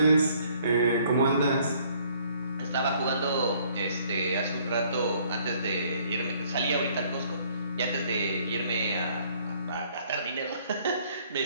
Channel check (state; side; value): inverted; both; correlation -0.62